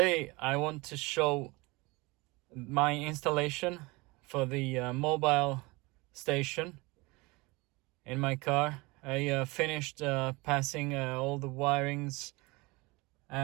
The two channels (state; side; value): quieter; left; 24.4 dB